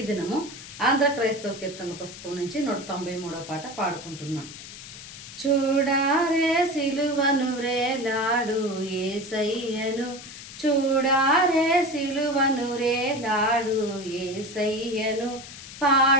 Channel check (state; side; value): noise; left; hiss, 14 dB below the sound